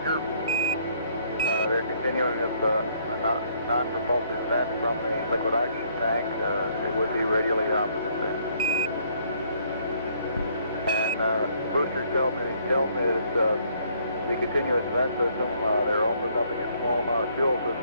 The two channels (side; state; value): both; inverted; correlation -0.65